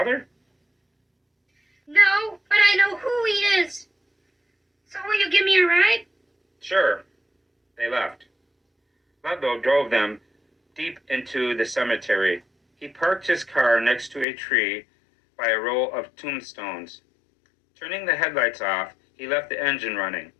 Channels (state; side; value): drops out; right; at 14.2 s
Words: No, but I know who he is. So will you give me a ride? Sure. They left. Ludlow drove them deep into the cemetery. He parked his car next to a tree by a row of tombstones. Turning the headlights off, he left the engine running.